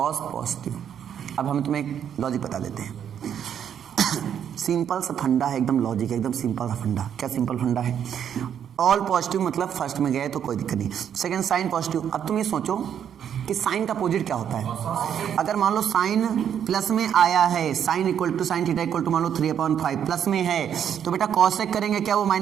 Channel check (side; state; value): left; quieter; 8.9 dB